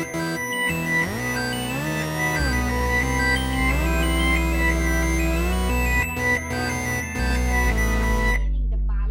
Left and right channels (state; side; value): identical; both; correlation 1.00